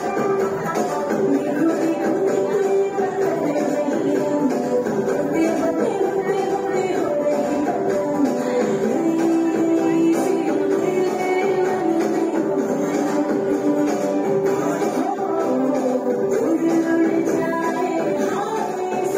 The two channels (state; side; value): identical; both; correlation 1.00